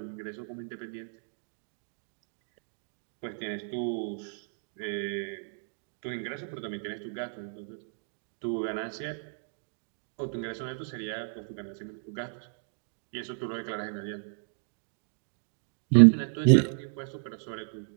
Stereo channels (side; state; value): left; silent; digital silence